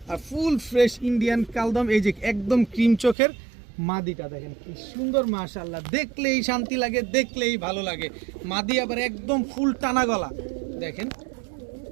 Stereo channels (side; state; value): left; drops out; at 3.2 s